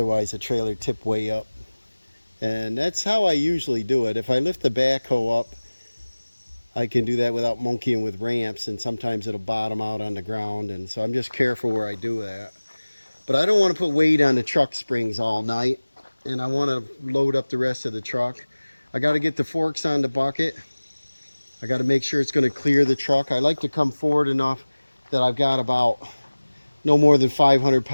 the trailer tipped way up. And that's how I usually do it. If I lift the backhoe up, I can do that without monkeying with ramps, and sometimes it'll bottom out on the ground, and so I'm just careful where I do that. But I don't want to put weight on the truck springs all night, and I want to load up the rest of the truck. I got to get the forks on the bucket. I got to make sure it's going to clear the truck. I like to come forward enough that I've got about no more than 500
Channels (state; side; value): inverted; both; correlation -1.00